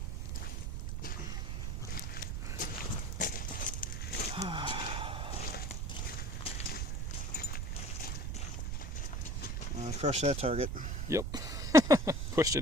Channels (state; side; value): noise; right; rumble, 1 dB below the sound